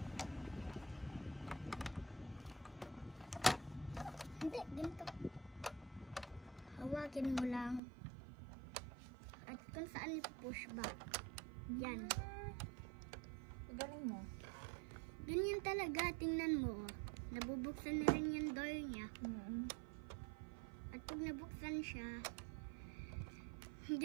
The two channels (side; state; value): left; drops out; at 7.8 s